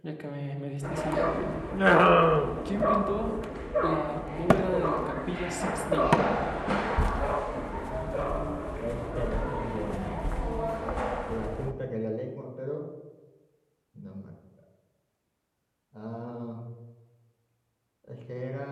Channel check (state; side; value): identical; both; correlation 1.00